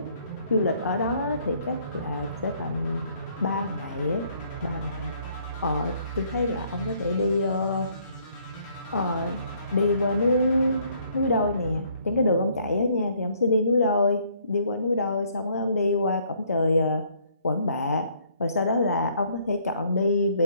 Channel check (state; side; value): inverted; both; correlation -0.65